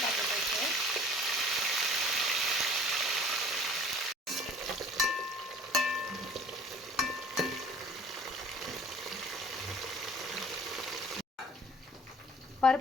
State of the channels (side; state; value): both; normal; correlation 0.50